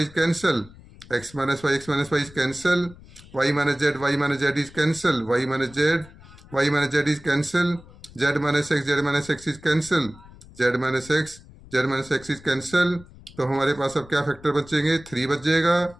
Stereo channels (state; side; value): noise; left; rumble, 21 dB below the sound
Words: cancel, X minus Y is cancel, Y minus Z is cancel, Y minus Z is cancel, Z minus X is cancel, Z minus X is cancel. तो हमारे पास अब क्या factor बचेंगे 3 बच जाएगा,